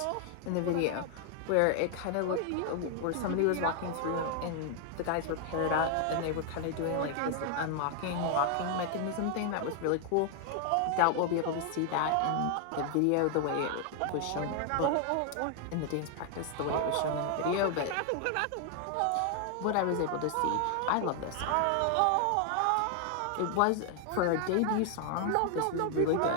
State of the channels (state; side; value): different; both; correlation 0.00